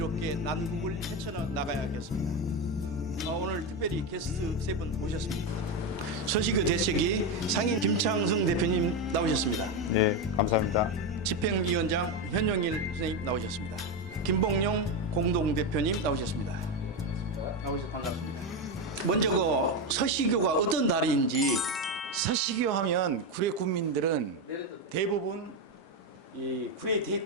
난국을 헤쳐나가야겠습니다. 오늘 특별히 게스트 세 분 모셨습니다. 서식교 대책위 상임 김창승 대표님 나오셨습니다. 네, 감사합니다. 집행위원장 현영일 선생님 나오셨습니다. 김봉용 공동대표님 나오셨습니다. 나오셔서 반갑습니다. 먼저 그 서식교가 어떤 달인지. 서식교 하면 구례 국민들은 대부분 이 구례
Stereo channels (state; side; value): normal; both; correlation 0.12